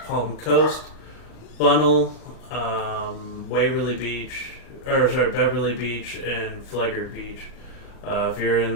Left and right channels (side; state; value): right; late; 38 ms